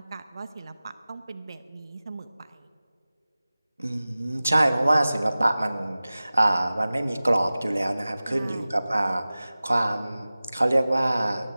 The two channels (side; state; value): both; inverted; correlation -0.97